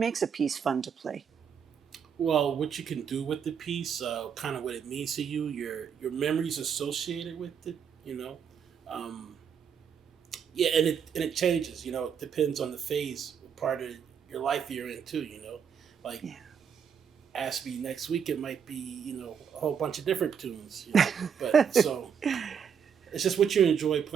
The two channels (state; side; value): quieter; left; 7.3 dB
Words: a piece fun to play? Well, what you can do with the piece, kind of what it means to you, your memories associated with it, you know. Um, yeah, and it changes. You know, it depends on the phase, part of your life you're in too. You know, like Yeah. ask me next week, it might be a whole bunch of different tunes. You know, but so it's just what you enjoy